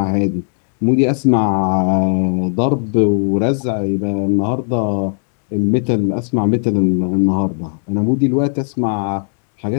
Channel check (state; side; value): silent; right; digital silence